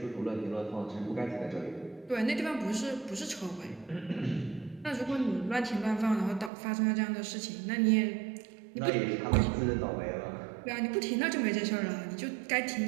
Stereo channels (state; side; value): drops out; left; at 6.5 s